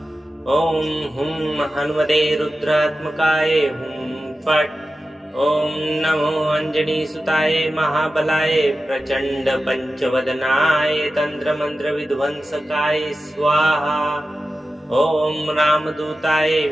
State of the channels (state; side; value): normal; both; correlation 0.93